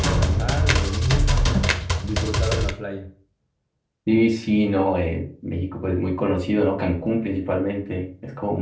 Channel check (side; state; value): both; identical; correlation 1.00